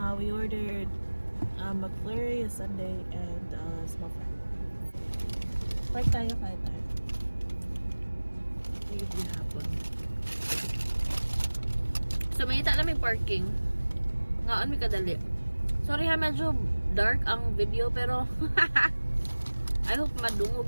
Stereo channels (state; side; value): inverted; both; correlation -1.00